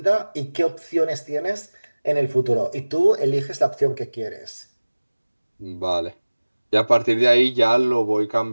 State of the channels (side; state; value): both; inverted; correlation -1.00